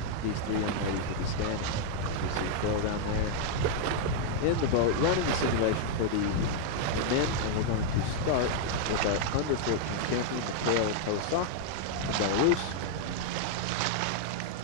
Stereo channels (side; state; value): right; late; 15 ms